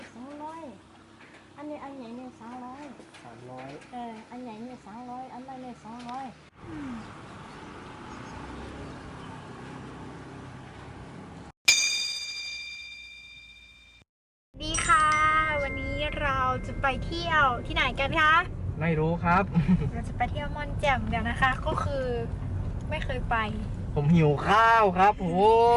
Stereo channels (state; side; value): identical; both; correlation 1.00